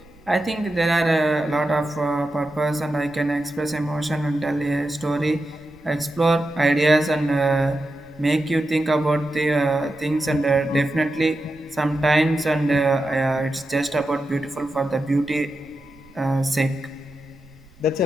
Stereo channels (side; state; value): right; noise; rumble, 27 dB below the sound